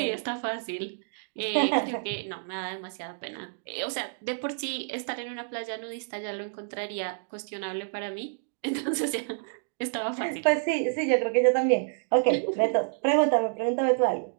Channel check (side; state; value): left; silent; digital silence